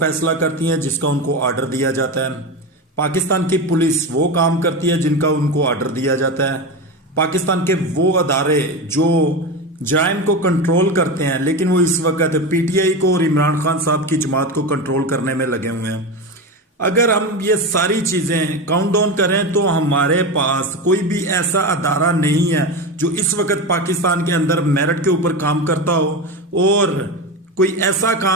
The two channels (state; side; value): normal; both; correlation 0.21